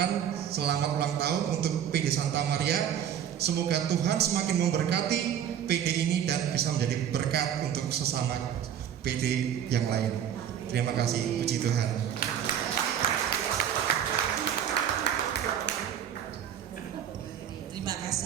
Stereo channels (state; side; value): quieter; left; 9.4 dB